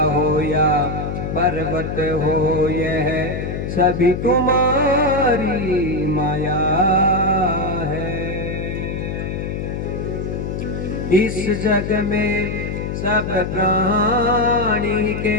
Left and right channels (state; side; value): noise; left; hum, 4 dB below the sound